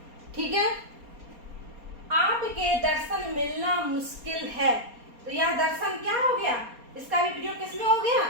ठीक है, आपके दर्शन मिलना मुश्किल है, तो यह दर्शन क्या हो गया, इसका भी प्रयोग किसमें हो गया,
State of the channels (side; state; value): left; late; 4.3 ms